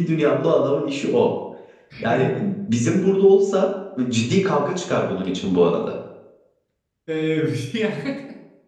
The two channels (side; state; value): both; identical; correlation 1.00